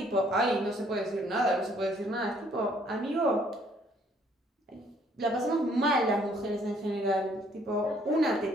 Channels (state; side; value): normal; both; correlation 0.64